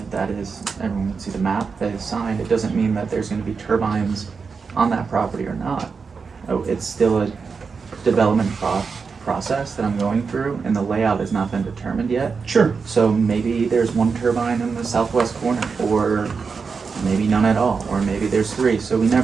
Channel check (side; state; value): left; quieter; 5.2 dB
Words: that is, everyone can see the map that is signed, it doesn't mean that there's gonna be turbines on that property or not. Oh, it's still a development process that I'm going through, and the layout has not been determined yet. sure. So maybe there's one turbine in the southwest corner, or maybe none at all, or maybe there's three, so we